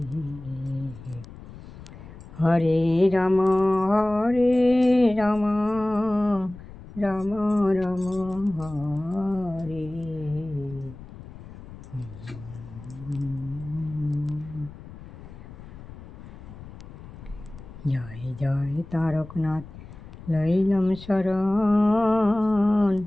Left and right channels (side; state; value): left; noise; rumble, 16 dB below the sound